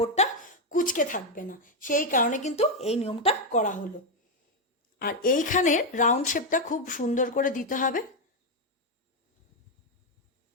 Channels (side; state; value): both; normal; correlation 0.04